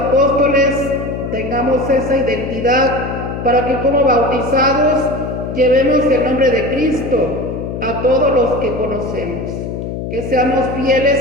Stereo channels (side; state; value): left; noise; hum, 6 dB below the sound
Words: tengamos esa identidad para que como bautizados llevemos el nombre de Cristo a todos los que conocemos. Que seamos